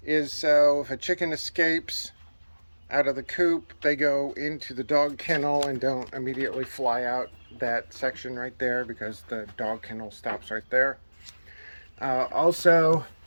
is so if a chicken escapes out of the coop, they go into the dog kennel and don't immediately fly out that section right there, because the dog kennel stops right there. Also,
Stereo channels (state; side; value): inverted; both; correlation -1.00